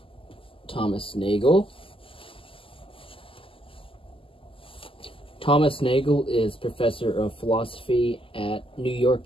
Thomas Nagel. Thomas Nagel is professor of philosophy at New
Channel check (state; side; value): late; right; 0.26 ms